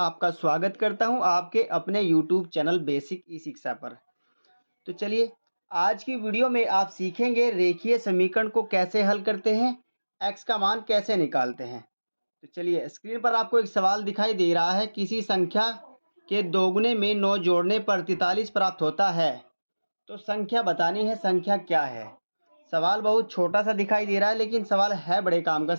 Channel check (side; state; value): both; inverted; correlation -1.00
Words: स्वागत करता हूं आपके अपने यूट्यूब चैनल बेसिक ई शिक्षा पर। तो चलिए, आज की वीडियो में आप सीखेंगे रेखीय समीकरण को कैसे हल करते हैं, एक्स का मान कैसे निकालते हैं। तो चलिए, स्क्रीन पर आपको एक सवाल दिखाई दे रहा है, किसी संख्या के दोगुने में 9 जोड़ने पर 43 प्राप्त होता है। तो संख्या बतानी है, संख्या क्या है। सवाल बहुत छोटा सा दिखाई दे रहा है, लेकिन सवाल है बड़े काम का